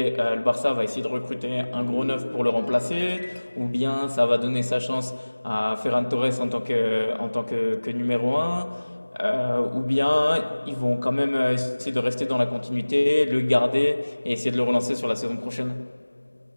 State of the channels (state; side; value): inverted; both; correlation -1.00